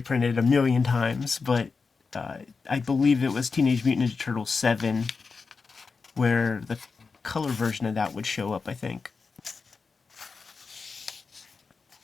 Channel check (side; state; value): right; quieter; 4.7 dB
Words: a million times, but I believe it was Teenage Mutant Ninja Turtles 7 where the color version of that would show up, I think.